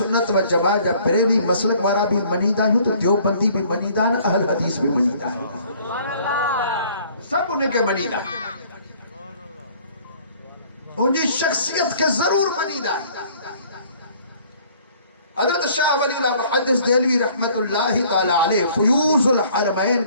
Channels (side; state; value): both; inverted; correlation -0.56